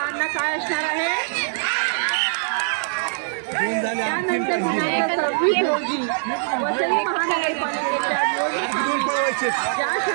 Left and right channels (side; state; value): left; silent; 64 dB below the other